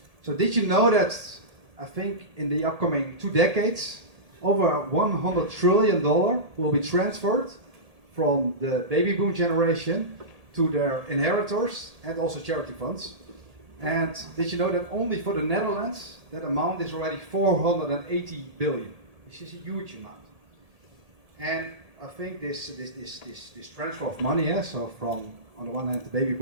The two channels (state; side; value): late; left; 1.8 ms